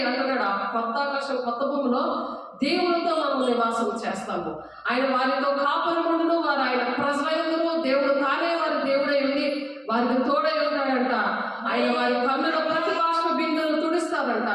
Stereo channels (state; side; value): identical; both; correlation 1.00